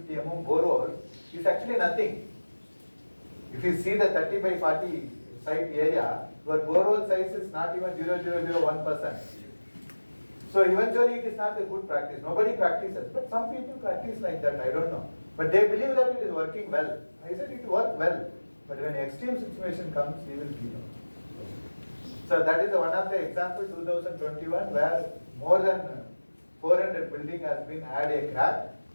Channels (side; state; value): both; inverted; correlation -1.00